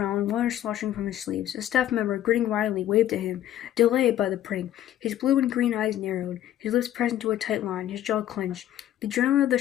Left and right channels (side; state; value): right; quieter; 12.2 dB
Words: water sloshing from his sleeves. A staff member, grinning wildly, waved at him, delighted by the prank. His blue and green eyes narrowed, his lips pressed into a tight line, his jaw clenched. The adrenaline of the